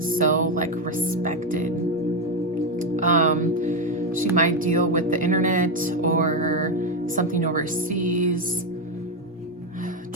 so like respected. She might deal with the internet or something overseas.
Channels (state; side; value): normal; both; correlation 0.08